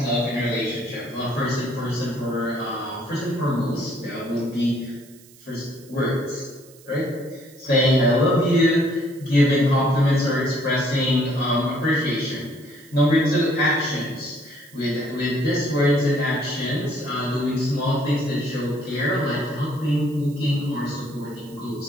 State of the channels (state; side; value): noise; right; hiss, 24 dB below the sound